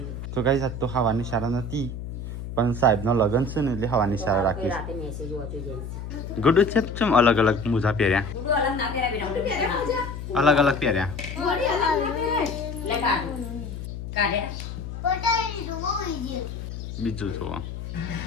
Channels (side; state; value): left; noise; hum, 8 dB below the sound